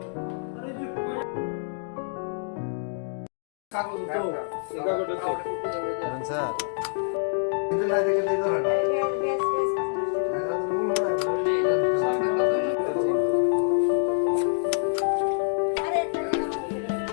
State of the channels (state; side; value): silent; right; digital silence